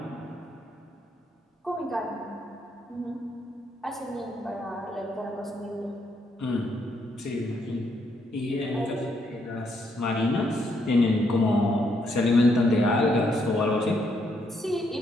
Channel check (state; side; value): normal; both; correlation 0.75